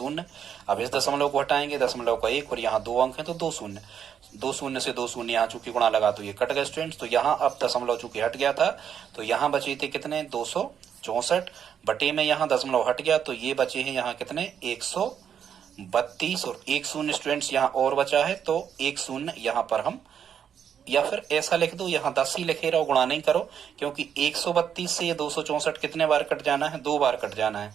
अब इस दशमलव को हटाएंगे, दशमलव का 1 और यहाँ 2 अंक हैं तो 2 शून्य। 2 शून्य से 2 शून्य यहाँ चूंकि गुणा लगा तो ये कट गए स्टूडेंट्स। तो यहाँ अब दशमलव चूंकि हट गया था तो यहाँ बचे थे कितने 264 बटे में यहाँ दशमलव हट गया तो ये बचे हैं यहाँ कितने 132 और 1 शून्य स्टूडेंट्स यहाँ और बचा है तो 1 शून्य यहाँ पर हम, या फिर ऐसा लिख दो यहाँ 10 ही लिखे रहो, गुणा नहीं करो, क्योंकि 132 से ये 264 कितने बार कट जाना है, 2 बार कट जाना है।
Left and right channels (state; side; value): quieter; left; 8.4 dB